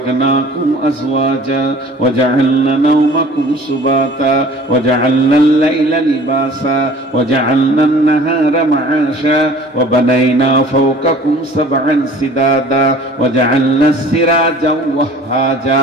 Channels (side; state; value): both; normal; correlation 0.48